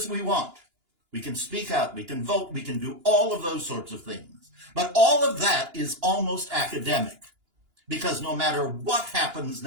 we want. We can speak out, we can vote, we can do all of those sorts of things. But all of that is almost academic, because no matter what happens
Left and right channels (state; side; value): late; left; 2.9 ms